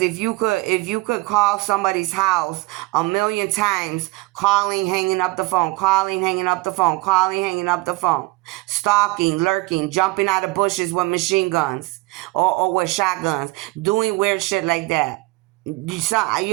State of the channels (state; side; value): quieter; left; 22.8 dB